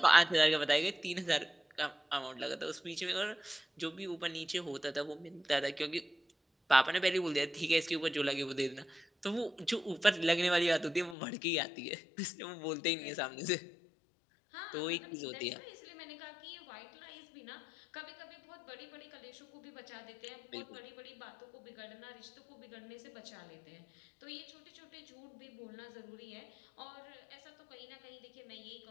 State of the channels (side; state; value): right; drops out; at 11.2 s